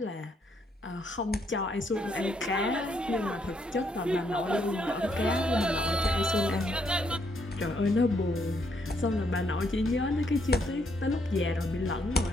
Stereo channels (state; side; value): normal; both; correlation 0.73